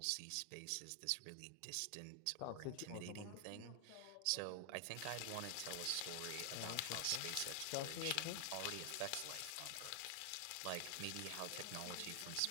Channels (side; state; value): both; different; correlation 0.00